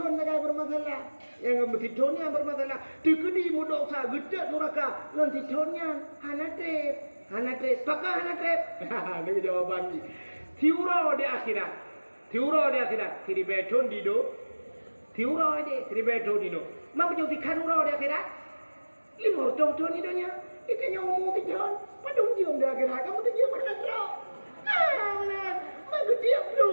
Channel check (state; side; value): inverted; both; correlation -1.00